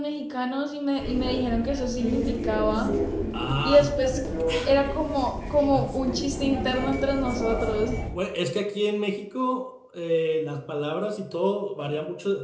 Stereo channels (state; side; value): identical; both; correlation 1.00